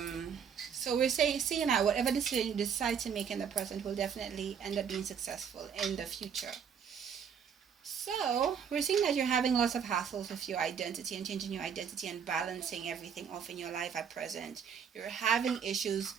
so we're seeing that whatever decision you decide to make in the present will definitely end up being successful in the future. So we're seeing that you're having lots of hassles with your identity and changing your identity and balancing everything off in your life at present. You're having issues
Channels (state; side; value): quieter; left; 7.3 dB